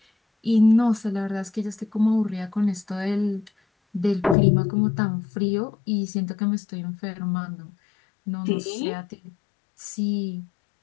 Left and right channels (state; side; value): drops out; right; at 4.4 s